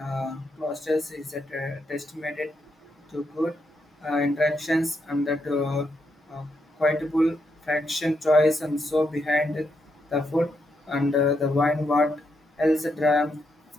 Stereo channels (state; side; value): normal; both; correlation 0.80